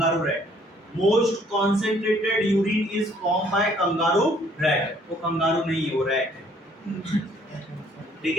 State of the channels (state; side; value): normal; both; correlation 0.62